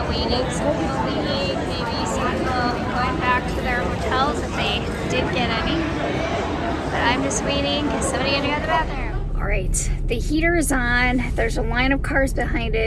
waiting. Some people leaving, maybe some people going back to their hotels if they did get any. But I'm just waiting because somebody had to go to the bathroom. All right, the heater is on. There's a line of cars behind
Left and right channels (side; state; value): both; identical; correlation 1.00